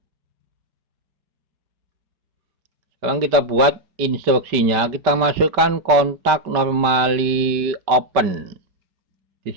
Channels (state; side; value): late; left; 5.2 ms